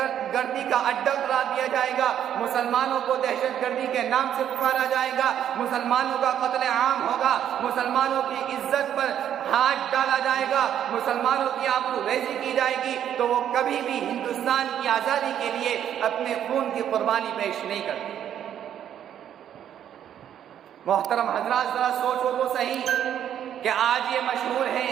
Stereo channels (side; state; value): left; quieter; 10.0 dB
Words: گردی کا اڈہ قرار دیا جائے گا، مسلمانوں کو دہشت گردی کے نام سے پکارا جائے گا، مسلمانوں کا قتل عام ہوگا، مسلمانوں کی عزت پر ہاتھ ڈالا جائے گا، مسلمانوں کی آبرو ریزی کی جائے گی، تو وہ کبھی بھی ہندوستان کی آزادی کے لیے اپنے خون کی قربانی پیش نہیں کرتی۔ محترم حضرات، ذرا سوچو تو صحیح کہ آج یہ مشہور ہے